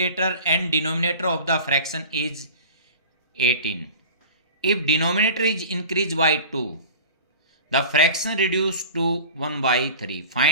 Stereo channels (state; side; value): inverted; both; correlation -0.39